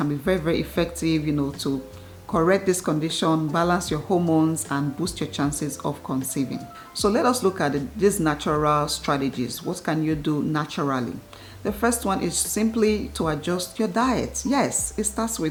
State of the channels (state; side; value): identical; both; correlation 1.00